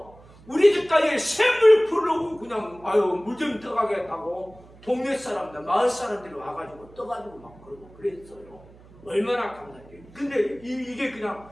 우리 집까지 샘을 풀려고 그냥 물 좀 떠가겠다고 동네 사람들 마을 사람들이 와가지고 떠가지고 막 그러고 그랬어요. 얼마나 감사해요. 근데 이게 그냥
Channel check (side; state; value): right; noise; hum, 23 dB below the sound